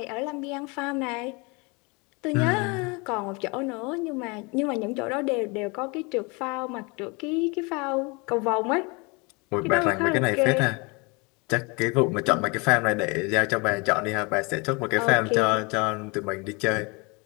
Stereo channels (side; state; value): right; quieter; 28.8 dB